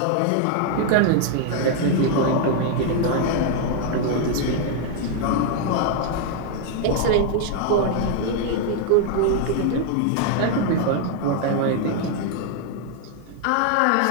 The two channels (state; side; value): different; both; correlation 0.00